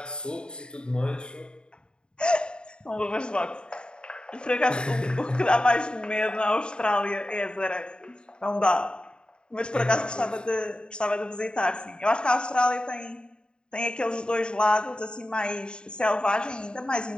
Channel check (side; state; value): right; late; 0.050 ms